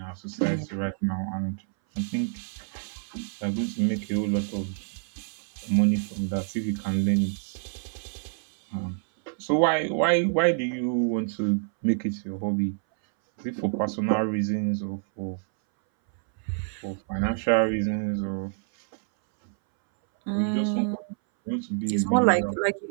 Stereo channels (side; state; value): left; silent; 60 dB below the other